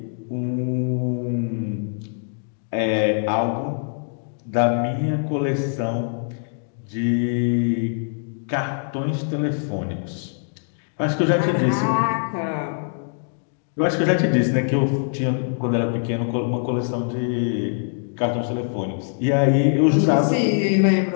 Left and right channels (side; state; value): right; silent; digital silence